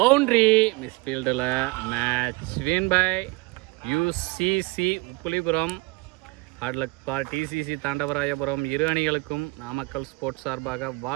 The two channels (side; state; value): left; quieter; 24.3 dB